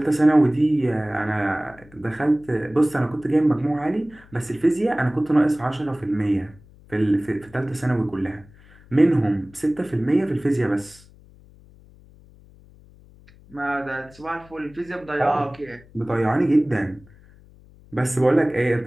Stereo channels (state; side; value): noise; left; hum, 25 dB below the sound